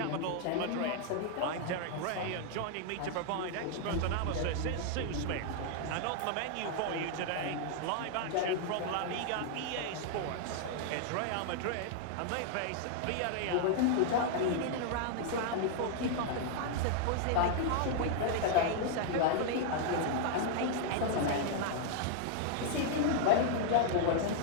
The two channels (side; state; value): both; different; correlation 0.00